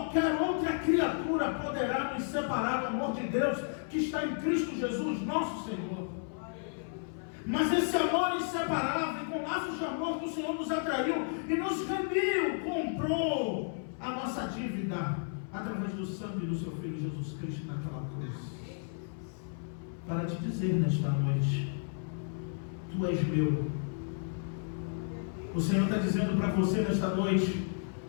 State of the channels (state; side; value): silent; right; 56 dB below the other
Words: outra criatura poderá nos separar do amor de Deus que está em Cristo Jesus, nosso Senhor. Mas esse amor inseparável, com laços de amor que o Senhor nos atraiu e nos remiu, comprou a nossa dívida através do sangue do seu Filho Jesus Cristo naquela cruz. Para te dizer nesta noite: tu és meu. O Senhor está dizendo para você nesta noite: